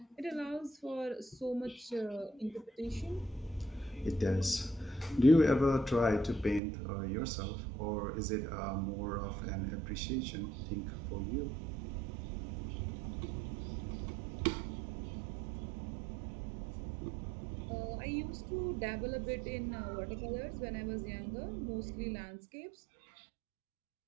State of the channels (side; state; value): left; drops out; at 6.6 s